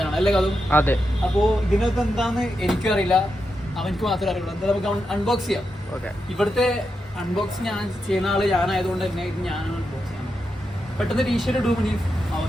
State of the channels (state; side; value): normal; both; correlation 0.86